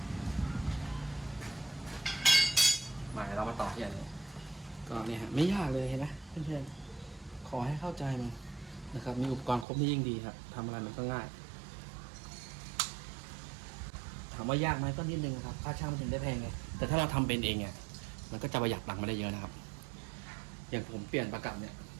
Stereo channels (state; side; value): drops out; left; at 9.7 s